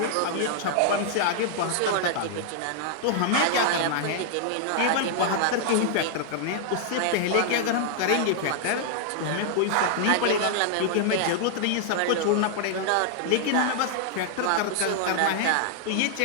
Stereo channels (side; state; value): both; different; correlation -0.01